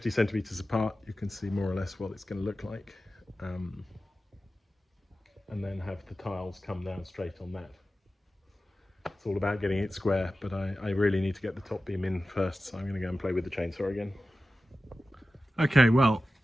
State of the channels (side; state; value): both; normal; correlation 0.94